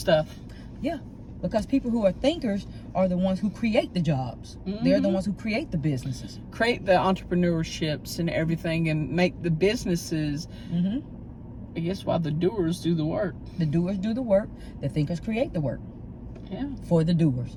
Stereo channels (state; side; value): identical; both; correlation 1.00